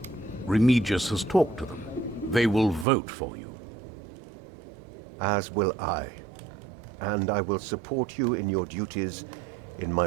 Remigius has talked to them. They will vote for you. As will I. And I will support you in your duties in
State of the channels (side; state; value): left; drops out; at 2.9 s